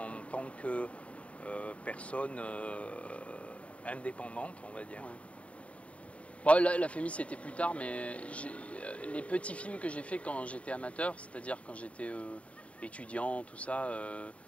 tant que personne indépendante, on va dire. Ouais. Bon, la FEMIS c'était plus tard, mais les petits films que j'ai fait quand j'étais amateur, c'est-à-dire quand j'étais étudiant, tout ça,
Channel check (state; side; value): late; right; 0.064 ms